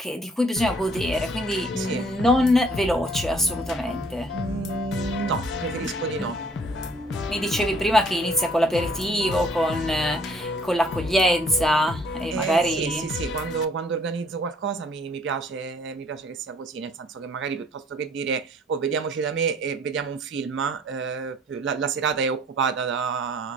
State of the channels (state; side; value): normal; both; correlation 0.59